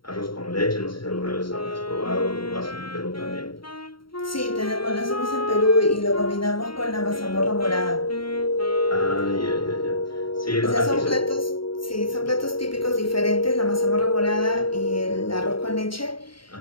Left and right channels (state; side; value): late; right; 0.73 ms